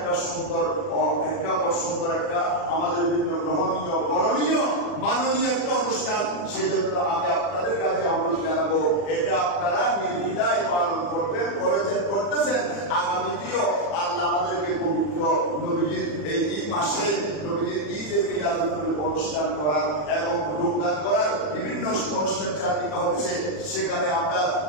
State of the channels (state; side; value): late; right; 40 ms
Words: সুন্দর একটা আমাদের জন্য গ্রহণীয়, করণীয়, মাননীয় একটা অনুষ্ঠান। সেজন্য আমি আপনাদের কাছে অনুরোধ জানাবো, এটা আপনারা নির্দ্বিধায় পালন করবেন, করতেছেন। আগামীতেও আল্লাহ আমাদেরকে পবিত্র নবীজির এই মাসে নবীজির ঈদে মিলাদুন নবীর অনুষ্ঠান করার এবং যোগদান করার বিভিন্ন অনুষ্ঠান চালিকা হচ্ছে, সেখানে আমরা